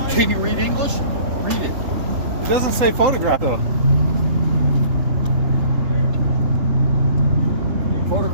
Can you read English? Read it. It doesn't say photograph though.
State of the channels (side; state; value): left; late; 3.8 ms